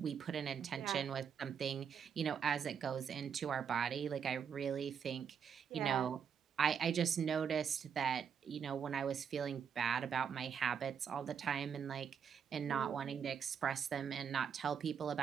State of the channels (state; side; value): quieter; left; 7.4 dB